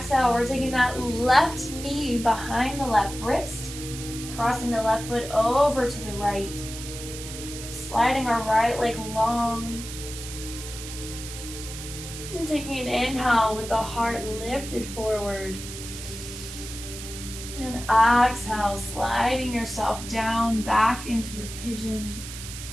we're taking that left knee behind the left wrist, crossing the left foot over to the right, sliding our right leg long. And taking an inhale with the heart lifted forward. And exhale, sliding yourself down back into your pigeon.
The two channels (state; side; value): noise; right; hiss, 10 dB below the sound